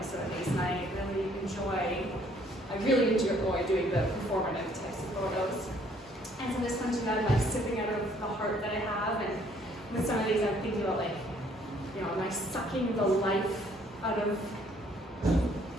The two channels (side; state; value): both; normal; correlation 0.63